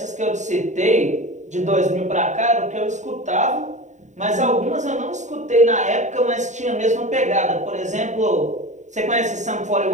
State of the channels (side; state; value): left; late; 0.34 ms